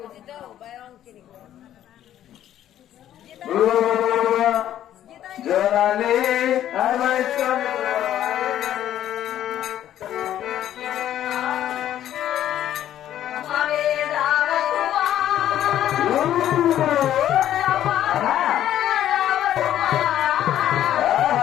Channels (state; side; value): quieter; right; 11.7 dB